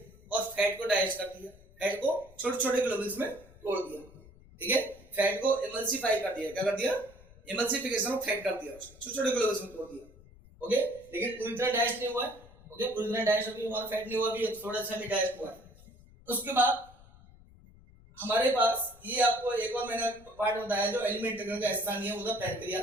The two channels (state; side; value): noise; left; rumble, 23 dB below the sound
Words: और फैट को डाइजेस्ट कर दिया, फैट को छोटे छोटे ग्लोबुल्स में तोड़ दिया। ठीक है, फैट को इमल्सिफाई कर दिया। क्या कर दिया, इमल्सिफिकेशन ऑफ फैट कर दिया, छोटे छोटे ग्लोबुल्स में तोड़ दिया। ओके, लेकिन पूरी तरह डाइजेस्ट नहीं हुआ है। ओके, पूरी तरह डाइजेस्ट अभी हमारा फैट नहीं हुआ, अभी थोड़ा सा भी डाइजेस्ट हुआ है। उसके बाद हमारे पास ये आपको एक और मैंने पार्ट बताया जो एलिमेंट्री का हिस्सा नहीं है, वो था